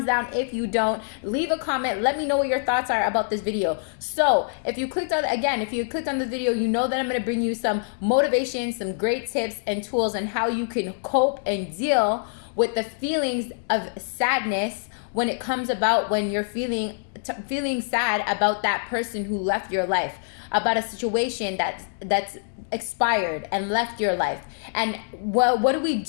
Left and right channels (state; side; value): silent; right; digital silence